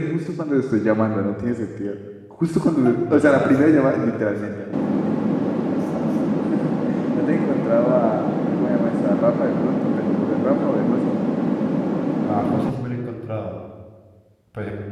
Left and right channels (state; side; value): identical; both; correlation 1.00